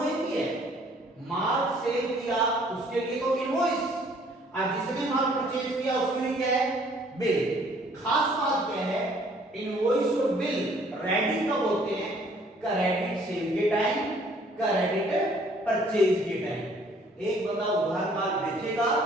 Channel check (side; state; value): both; normal; correlation 0.59